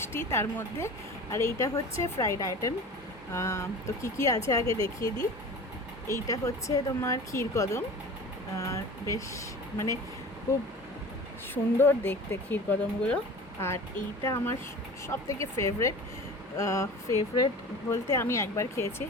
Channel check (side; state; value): both; normal; correlation 0.37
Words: তার মধ্যে। আর এইটা হচ্ছে ফ্রাইড আইটেম। তো কী আছে আগে দেখিয়ে দিই। এইটা হচ্ছে তোমার ক্ষীরকদম। বেশ মানে খুব সুন্দর দেখতে ক্ষীরকদমগুলো। আর এইটা আমার সব থেকে ফেভারেট বলতে আমি একবার খেয়েছি,